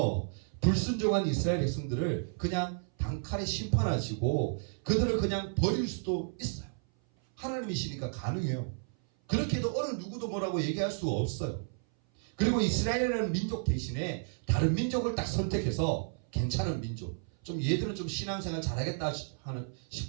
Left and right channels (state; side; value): silent; left; 56 dB below the other